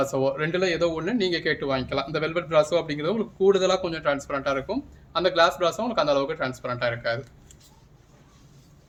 ரெண்டுல ஏதோ ஒன்று நீங்கள் கேட்டு வாங்கிக்கலாம். இந்த வெல்வெட் பிராஸோ அப்படிங்கிறது உங்களுக்கு கூடுதலாக கொஞ்சம் டிரான்ஸ்பரண்ட்டாக இருக்கும். அந்த கிளாஸ் பிராஸோ உங்களுக்கு அந்த அளவுக்கு டிரான்ஸ்பரண்ட்டாக இருக்காது.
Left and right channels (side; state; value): both; identical; correlation 1.00